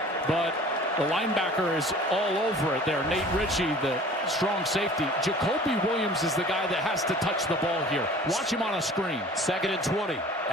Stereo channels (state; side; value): normal; both; correlation 0.46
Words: but the linebacker is all over it there. Nate Ritchie, the strong safety. Jacoby Williams is the guy that has to touch the ball here. Watch him on a screen. 2nd and 20